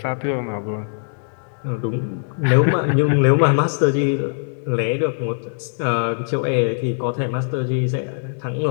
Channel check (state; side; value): silent; right; digital silence